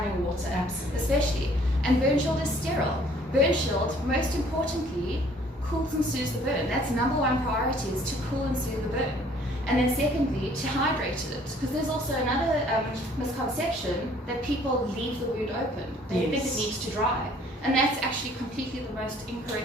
water. Absolutely. Especially. And Burnshield is sterile. Burnshield, most importantly, cools and soothes the burn. That's number one priority, is to cool and soothe the burn. And then secondly, to hydrate it, because there's also another misconception that people leave the wound open. They think it needs to dry. And that's actually completely the most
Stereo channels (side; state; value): both; normal; correlation 0.58